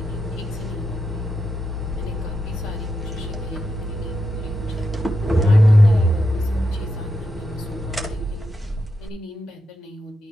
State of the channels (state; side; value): normal; both; correlation 0.86